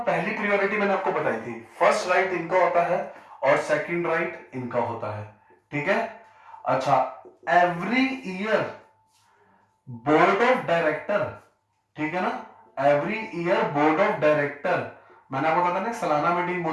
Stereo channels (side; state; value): both; identical; correlation 1.00